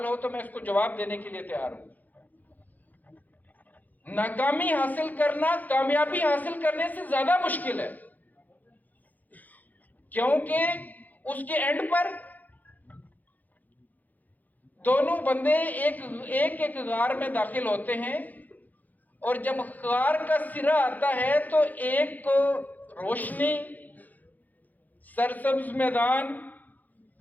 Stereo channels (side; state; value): right; late; 0.082 ms